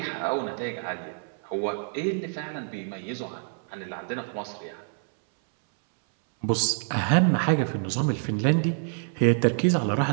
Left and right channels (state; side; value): silent; left; 60 dB below the other